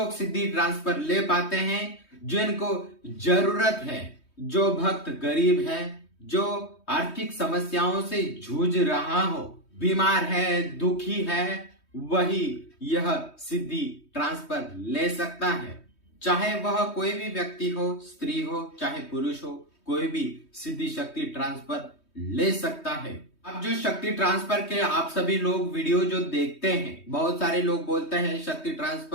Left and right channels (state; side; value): late; right; 3.2 ms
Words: सिद्धि ट्रांसफर ले पाते हैं जिनको जरूरत है। जो भक्त गरीब है, जो आर्थिक समस्याओं से जूझ रहा हो, बीमार है, दुखी है, वही यह सिद्धि ट्रांसफर ले सकता है। चाहे वह कोई भी व्यक्ति हो, स्त्री हो चाहे पुरुष हो, कोई भी सिद्धि शक्ति ट्रांसफर ले सकता है। अब जो शक्ति ट्रांसफर के आप सभी लोग वीडियो जो देखते हैं, बहुत सारे लोग बोलते हैं शक्ति